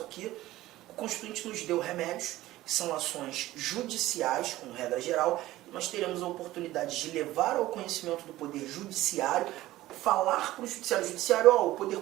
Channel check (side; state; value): left; quieter; 16.2 dB